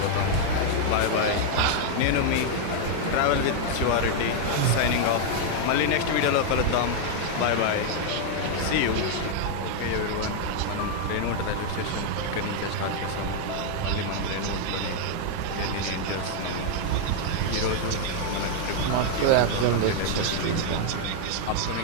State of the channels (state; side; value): different; both; correlation 0.00